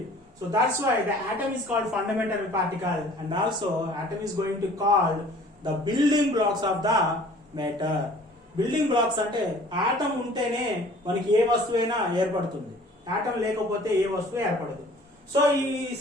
So that's why the atom is called fundamental particle, and also atom is going to call the building blocks of the matter. Building blocks అంటే ఆటం ఉంటేనే మనకి ఏ వస్తువైనా ఏర్పడుతుంది, ఆటం లేకపోతే ఏ వస్తువు ఏర్పడదు. సో ఈ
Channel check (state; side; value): normal; both; correlation 0.51